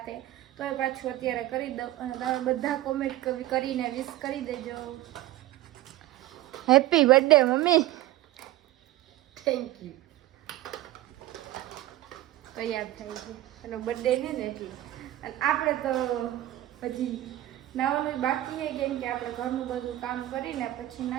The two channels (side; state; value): left; quieter; 15.1 dB